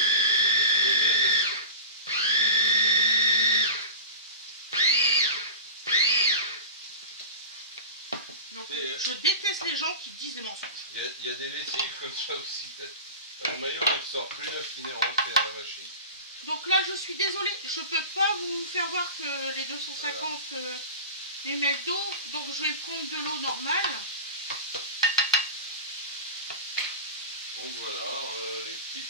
Donc, je déteste les gens qui disent des mensonges. Il y a des lessives comme ça aussi, peut-être. Le maillot ne sort plus là qu'il est rentré dans la machine. Donc là, je suis désolée, je peux pas vous faire voir que les 250 ml d'eau, donc je vais prendre de l'eau normale. Donc voilà, les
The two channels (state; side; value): inverted; both; correlation -0.31